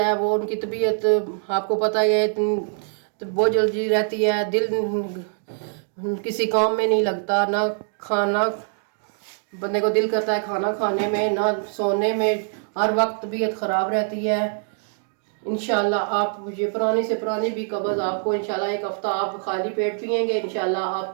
वो उनकी तबीयत आपको पता ही है तो बहुत जल्दी रहती है। दिल किसी काम में नहीं लगता, ना खाना बंदे को दिल करता है खाना खाने में, ना सोने में, हर वक्त तबीयत ख़राब रहती है। इंशाल्लाह आप ये पुरानी से पुरानी भी कब्ज़ आपको इंशाल्लाह 1 हफ़्ता आप खाली पेट पिएंगे, इंशाल्लाह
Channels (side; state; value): left; silent; digital silence